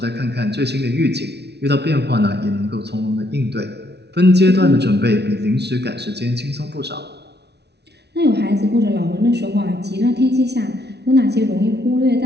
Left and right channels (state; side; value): late; left; 0.49 ms